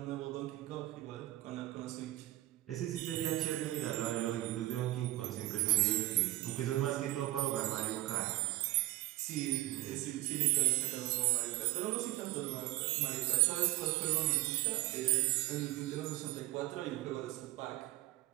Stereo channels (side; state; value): left; quieter; 17.3 dB